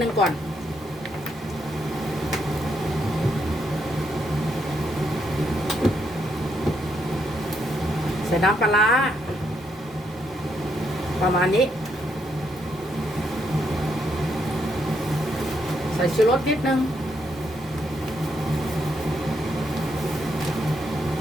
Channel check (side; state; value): both; normal; correlation 0.77